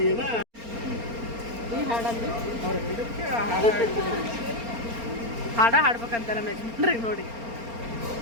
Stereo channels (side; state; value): left; late; 4.3 ms